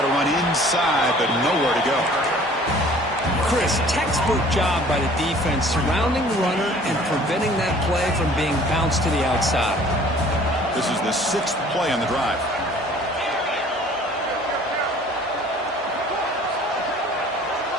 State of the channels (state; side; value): normal; both; correlation 0.51